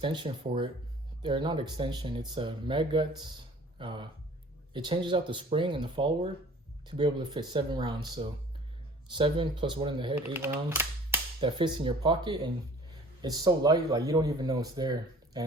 for it. They're not extension, it's a mag guts. It changes out the spring and the follower to be able to fit 7 rounds. So 7 plus 1 in the head, 8 rounds that fits in your pocket, and it's so light, like you don't even know it's there.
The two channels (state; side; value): normal; both; correlation 0.49